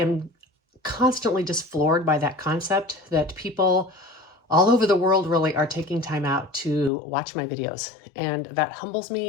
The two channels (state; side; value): drops out; right; at 6.9 s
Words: constantly just floored by that concept that people all over the world really are taking time out to watch my videos. And that humbles